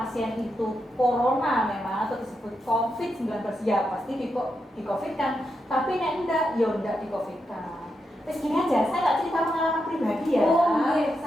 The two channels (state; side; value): normal; both; correlation 0.85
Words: itu corona memang atau disebut COVID-19 ya pasti di COVID kan, tapi nek enggak ya enggak di COVID kan. Terus gini aja, saya nggak cerita pengalaman pribadi ya,